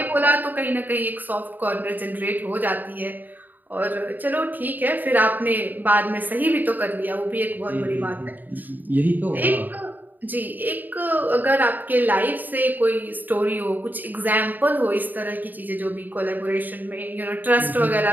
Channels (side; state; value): left; late; 0.087 ms